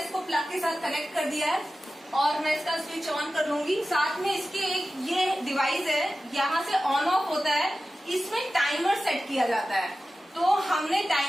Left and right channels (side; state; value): both; normal; correlation 0.94